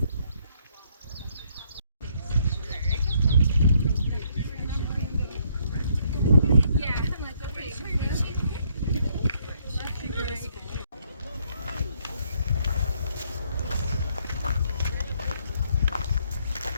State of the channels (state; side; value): inverted; both; correlation -0.69